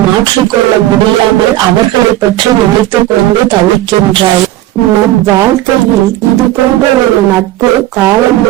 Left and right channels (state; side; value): quieter; left; 15.2 dB